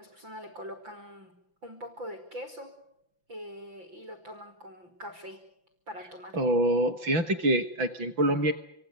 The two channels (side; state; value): left; late; 5.9 ms